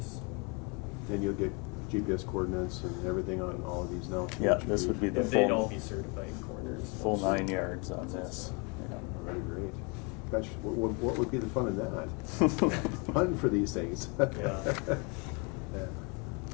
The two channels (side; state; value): right; quieter; 32.3 dB